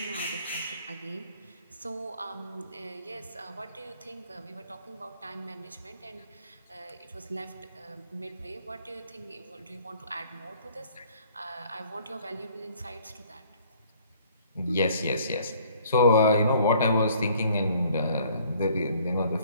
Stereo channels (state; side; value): inverted; both; correlation -0.58